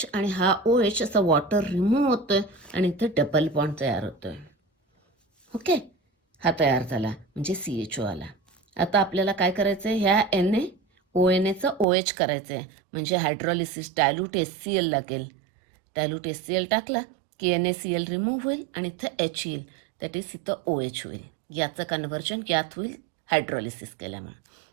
आणि हा OH असा वॉटर रिमूव्ह होतोय आणि इथे डबल बॉन्ड तयार होतोय. ओके, हा तयार झाला म्हणजे CHO आला. आता आपल्याला काय करायचं आहे, ह्या NaONaचं OH करायचं आहे, म्हणजे हायड्रोलिसिस डायल्यूट HCl लागेल. डायल्यूट HCl टाकला की NaCl रिमूव्ह होईल आणि इथं H येईल, दॅट इज इथं OH होईल. याचं कन्व्हर्जन यात होईल हायड्रोलिसिस केल्यामुळे.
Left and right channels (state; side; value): drops out; left; at 11.9 s